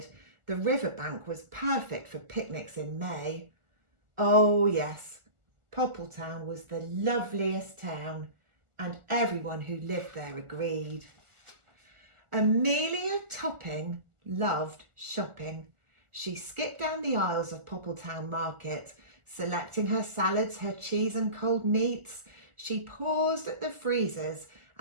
The riverbank was perfect for picnics in May. Oh yes, Poppletown was the loveliest town, and everyone who lived there agreed. Amelia Topping loved shopping. She skipped down the aisles of Poppletown Market, selecting her salads, her cheese and cold meats. She paused at the freezers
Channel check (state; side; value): late; left; 1.4 ms